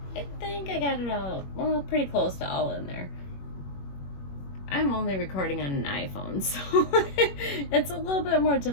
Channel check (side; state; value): right; late; 21 ms